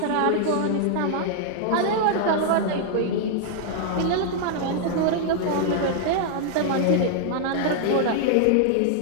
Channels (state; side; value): different; both; correlation -0.01